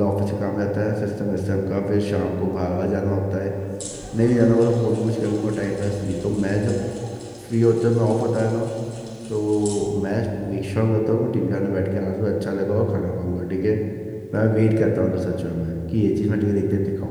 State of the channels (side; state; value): both; identical; correlation 1.00